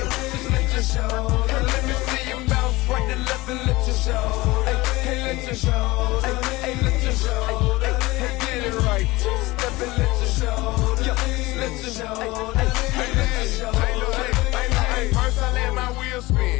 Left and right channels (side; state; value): right; quieter; 20.6 dB